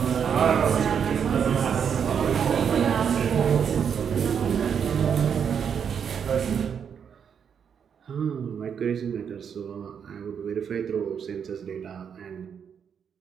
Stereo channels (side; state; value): left; quieter; 7.4 dB